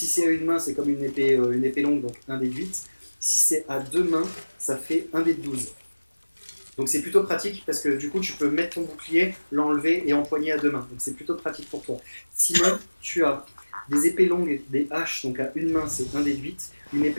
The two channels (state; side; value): inverted; both; correlation -1.00